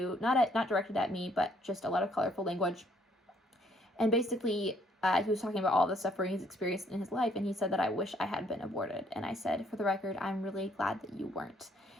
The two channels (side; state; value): both; normal; correlation 0.66